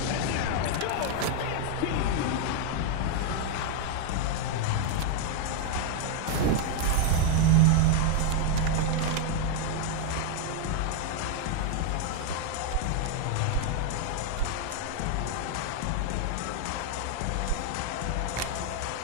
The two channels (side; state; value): both; different; correlation 0.00